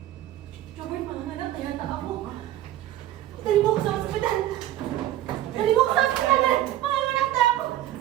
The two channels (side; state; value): left; quieter; 13.6 dB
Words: Robert, manganak, kaya ako. Dali mo ako sa ospital! Dali mo ako sa ospital! Manganak na ako!